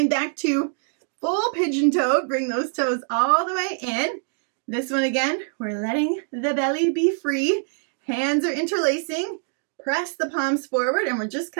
back to full pigeon toe. Bring those toes all the way in. This one again, we're letting the belly be free. Hands are interlacing. Press the palms forward, and we're just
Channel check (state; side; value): silent; left; 58 dB below the other